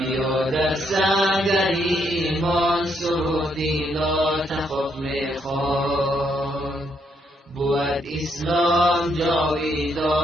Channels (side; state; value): both; normal; correlation 0.75